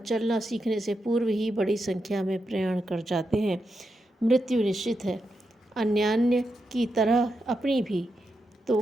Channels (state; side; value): normal; both; correlation 0.86